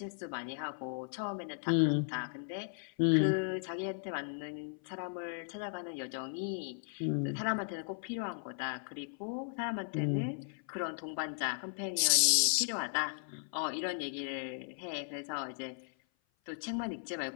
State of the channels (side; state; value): right; silent; 54 dB below the other